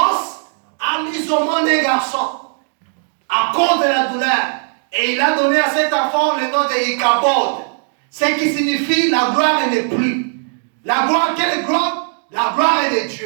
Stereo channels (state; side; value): silent; left; 55 dB below the other